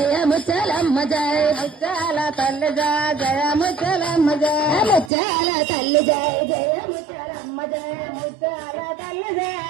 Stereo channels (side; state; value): left; drops out; at 5.1 s